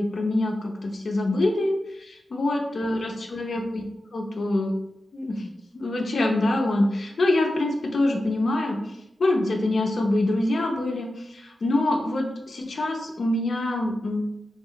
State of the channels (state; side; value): normal; both; correlation 0.92